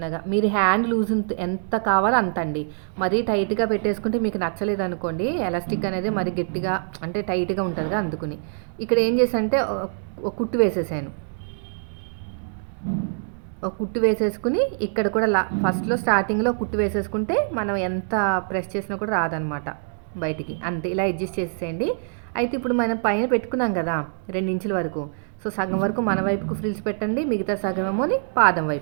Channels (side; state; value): left; silent; digital silence